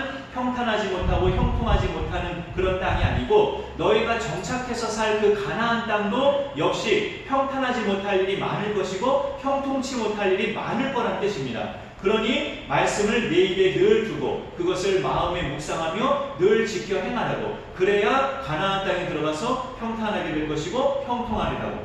평탄하지 못하고 형통하지 못하는 그런 땅이 아니고, 너희가 정착해서 살 그 가나안 땅도 역시 평탄하지 못할 일이 많을 것이고 형통치 못할 일이 많을 거란 뜻입니다. 그러니 말씀을 내 입에 늘 두고 그것을 마음에 묵상하며 늘 지켜 행하라고, 그래야 가나안 땅에 들어가서 평탄하게 될 것이고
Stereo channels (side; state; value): both; identical; correlation 1.00